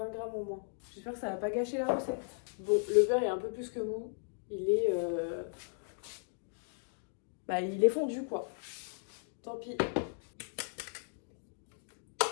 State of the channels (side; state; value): right; silent; digital silence